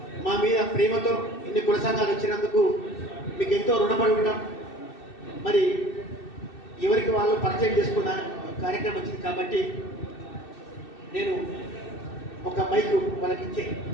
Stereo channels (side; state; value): right; late; 2.6 ms